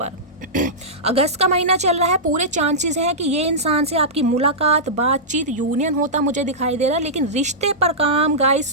अगस्त का महीना चल रहा है, पूरे चांसेस हैं कि ये इंसान से आपकी मुलाकात, बातचीत, यूनियन होता मुझे दिखाई दे रहा है। लेकिन रिश्ते पर काम गाइस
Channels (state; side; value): normal; both; correlation -0.14